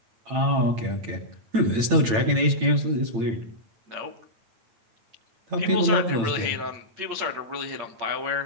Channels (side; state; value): left; late; 8.9 ms